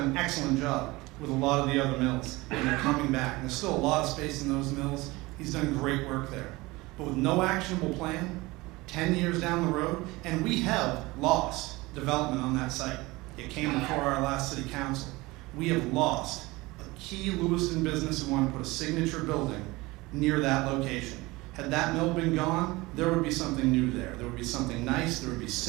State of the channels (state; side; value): quieter; left; 21.6 dB